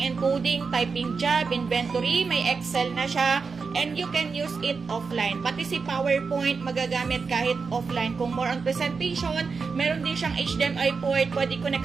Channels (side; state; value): left; quieter; 4.9 dB